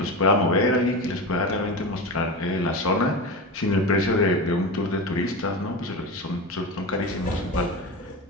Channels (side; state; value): both; normal; correlation 0.23